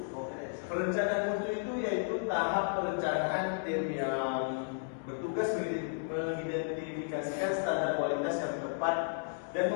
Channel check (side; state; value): right; silent; digital silence